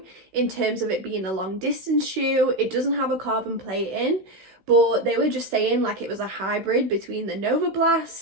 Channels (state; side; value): late; left; 16 ms